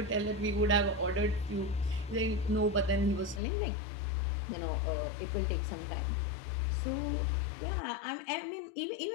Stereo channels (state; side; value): drops out; right; at 3.4 s